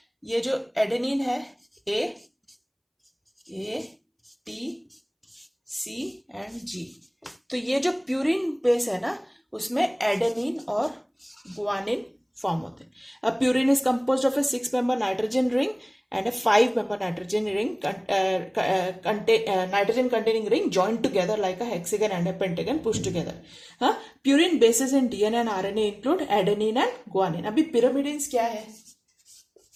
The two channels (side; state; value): both; identical; correlation 1.00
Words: ये जो एडेनिन है, ए टी सी एंड जी, तो ये जो प्यूरिन बेस है ना, उसमें एडेनिन और ग्वानिन फॉर्म होते हैं। अब purine is composed of A 6 member nitrogen ring and a 5 member nitrogen containing ring joined together like a hexagon and a pentagon pushed together. Purine bases in DNA and RNA include adenine and guanine. अभी pyrimidines क्या है